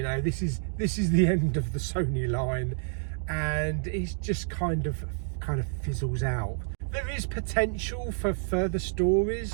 know, this is the end of the Sony line. And it just kind of fizzles out. There is potential for further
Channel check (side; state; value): left; silent; digital silence